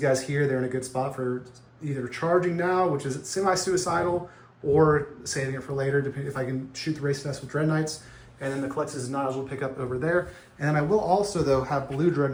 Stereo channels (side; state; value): both; identical; correlation 1.00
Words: here, they're in a good spot for either charging now, which is semi-suicidal, or saving it for later, depending if I can shoot the race test with Dread Knights. And then the Collectus is not as well pick up over there. And then I will also, though, have Blue Dread